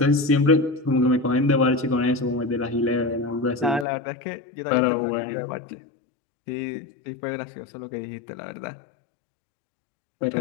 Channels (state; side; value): drops out; right; at 3.9 s